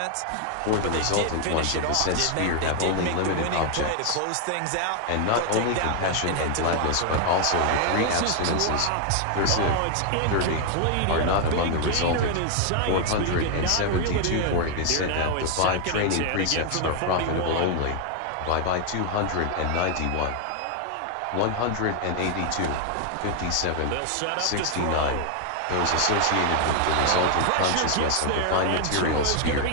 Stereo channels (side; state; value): both; different; correlation 0.00